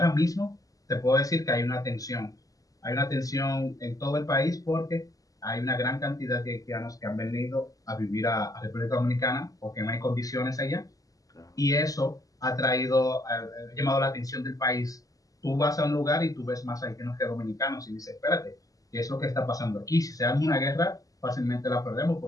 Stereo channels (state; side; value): late; right; 0.17 ms